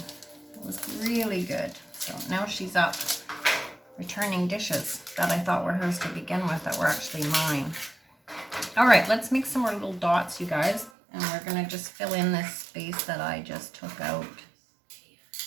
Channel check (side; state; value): left; drops out; at 10.9 s